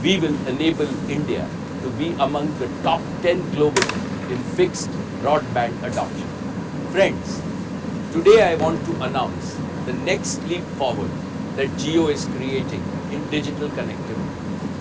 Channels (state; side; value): identical; both; correlation 1.00